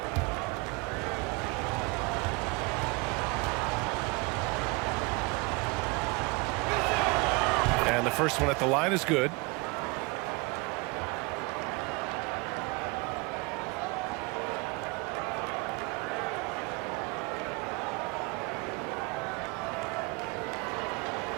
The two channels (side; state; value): left; quieter; 27.5 dB